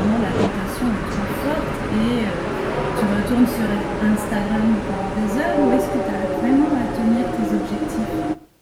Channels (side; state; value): both; identical; correlation 1.00